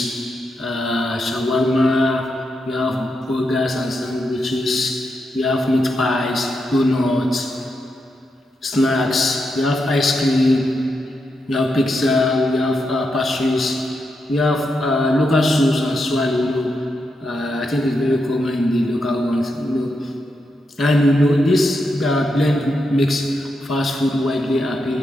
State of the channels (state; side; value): normal; both; correlation 0.84